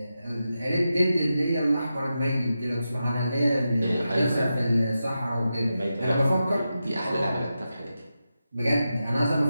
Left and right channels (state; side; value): inverted; both; correlation -0.89